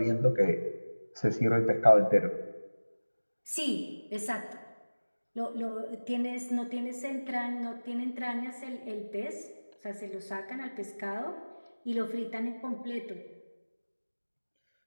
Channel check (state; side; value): inverted; both; correlation -1.00